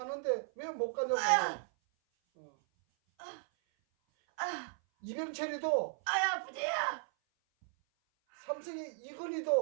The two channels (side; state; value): left; silent; 54 dB below the other